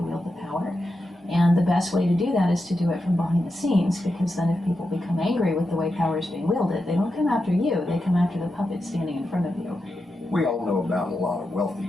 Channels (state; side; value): normal; both; correlation 0.88